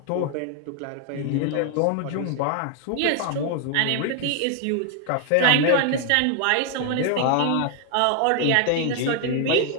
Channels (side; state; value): both; different; correlation 0.00